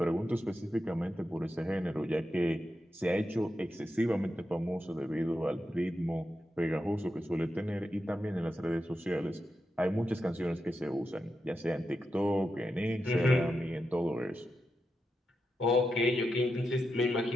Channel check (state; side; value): normal; both; correlation 0.87